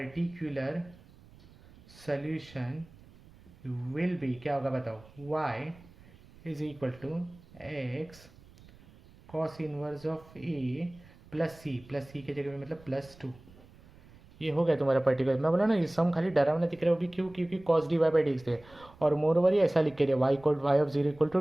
सोल्यूशन विल बी क्या होगा बताओ, y is equal to x cos inverse of a plus c के जगह पे मतलब प्लस 2। ये हो गया तुम्हारा पर्टिकुलर। मैं बोला ना ये सम खाली डरावना दिख रहा है, वो भी क्यों, क्योंकि cos d Y by D x थे, और मोर ओवर ये ऐसा लिख के दिया y of zero equal to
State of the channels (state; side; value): noise; right; rumble, 24 dB below the sound